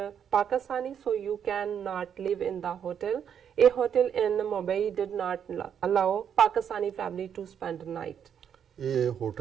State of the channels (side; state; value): left; quieter; 8.3 dB